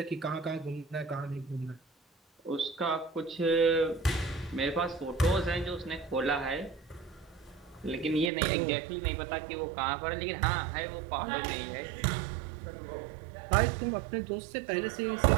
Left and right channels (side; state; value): left; drops out; at 8.3 s